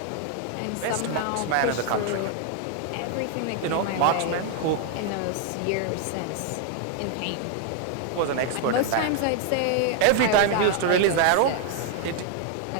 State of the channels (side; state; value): both; different; correlation 0.00